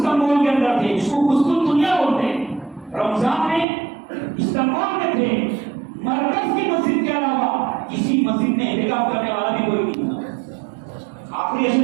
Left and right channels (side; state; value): left; drops out; at 3.7 s